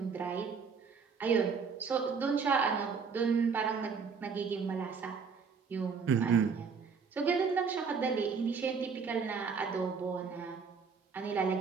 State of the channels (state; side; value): quieter; left; 5.6 dB